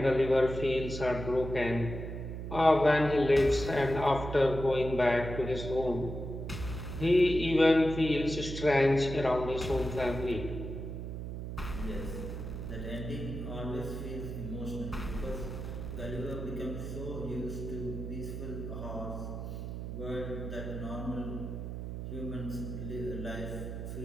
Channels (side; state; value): right; noise; hum, 6 dB below the sound